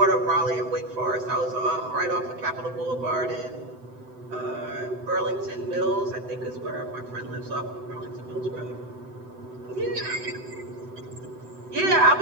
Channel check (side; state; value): left; late; 7.9 ms